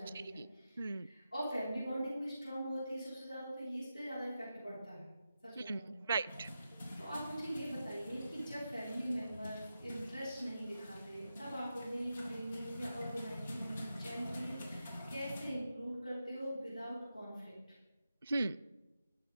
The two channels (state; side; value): inverted; both; correlation -0.90